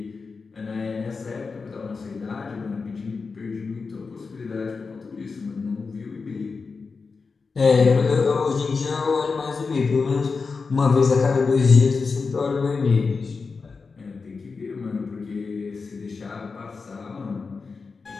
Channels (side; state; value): right; quieter; 4.7 dB